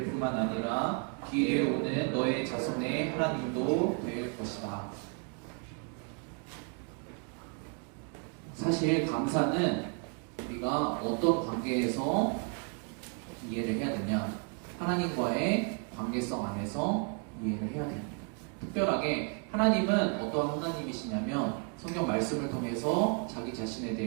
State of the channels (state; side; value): quieter; left; 38.6 dB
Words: 뿐만 아니라 뒤에 오는 너의 자손의 하나님도 될 것이다. 사실 감사는 우리가 어떤 관계에서 이해를 해야 되냐? 하나님과의 관계성 안에서 이해를 해야 됩니다. 특별하게 하나님은 어떤 하나님이시냐면 성경 말씀을 통해서 자기 자신에